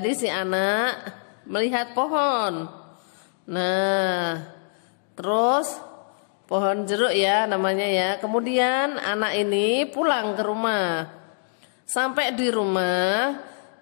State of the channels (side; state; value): right; silent; digital silence